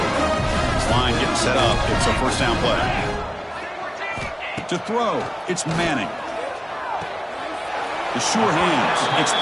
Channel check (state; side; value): identical; both; correlation 1.00